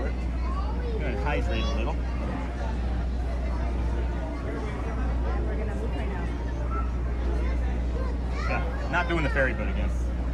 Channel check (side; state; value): both; identical; correlation 1.00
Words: I'm going to hydrate a little. Not doing the ferry boat again.